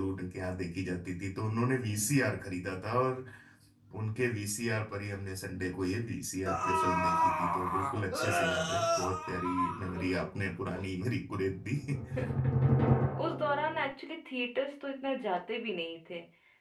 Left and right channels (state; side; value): identical; both; correlation 1.00